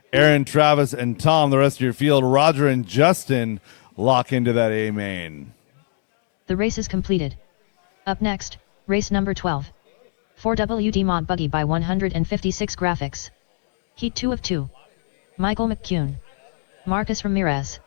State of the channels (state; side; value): silent; right; digital silence